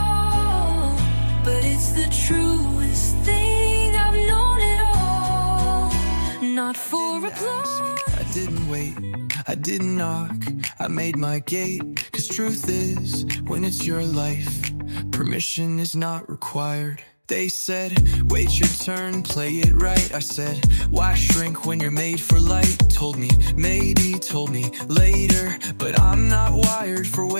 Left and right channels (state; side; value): inverted; both; correlation -1.00